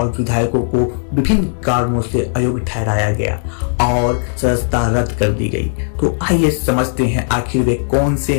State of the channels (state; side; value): silent; right; digital silence